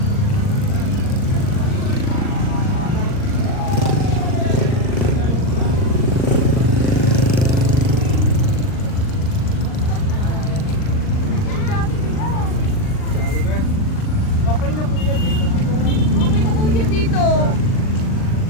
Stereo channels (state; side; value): late; right; 39 ms